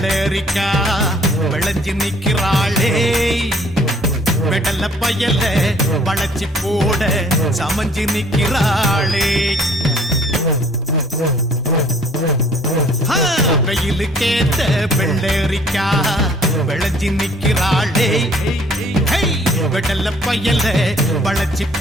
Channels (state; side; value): normal; both; correlation 0.57